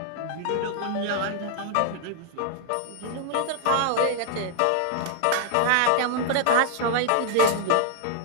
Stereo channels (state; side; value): different; both; correlation -0.01